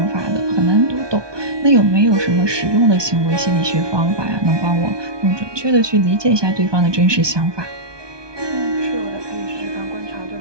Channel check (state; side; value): late; left; 1.2 ms